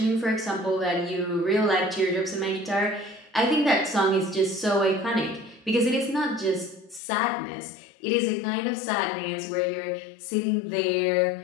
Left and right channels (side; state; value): right; drops out; at 7.0 s